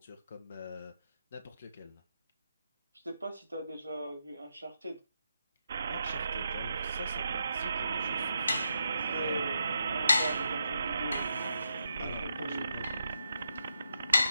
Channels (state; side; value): inverted; both; correlation -0.84